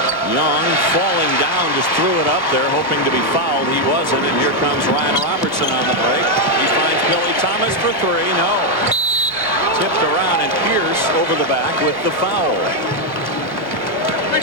Young falling down, just threw it up there, hoping to be fouled. He wasn't, and here comes Ryan Robertson on the break. He finds Billy Thomas for three. No. Tipped around, and Pierce over the back with the foul.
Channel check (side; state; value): both; normal; correlation 0.02